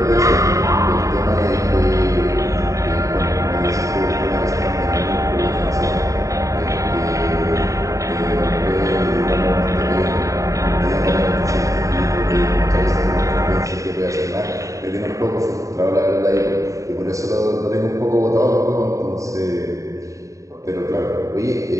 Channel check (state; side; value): late; left; 0.16 ms